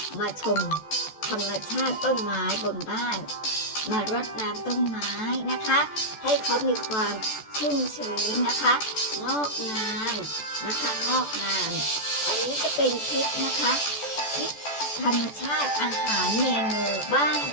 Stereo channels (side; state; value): right; late; 14 ms